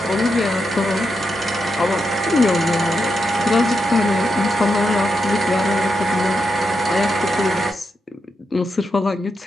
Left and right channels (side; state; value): both; normal; correlation 0.85